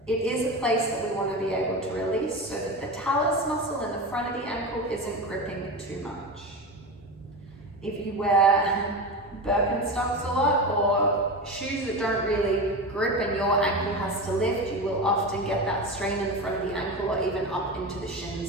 it is a place that we want to be able to release so that the talus muscle in the front of the ankle isn't gripping too much. If you wear Birkenstocks a lot or shoes that don't really grip and your ankle has to lift, you will often get that strain in the front of the ankle or even up into the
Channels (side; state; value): both; normal; correlation 0.23